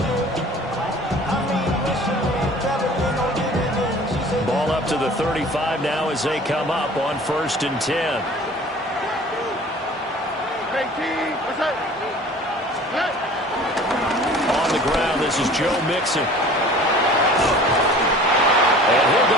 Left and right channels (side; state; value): both; normal; correlation 0.46